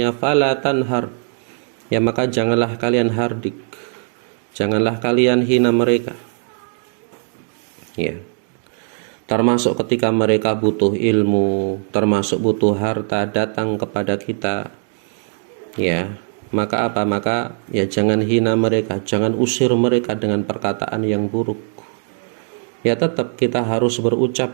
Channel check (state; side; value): silent; left; digital silence